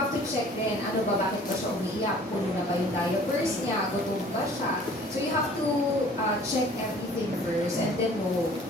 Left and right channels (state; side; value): normal; both; correlation 0.51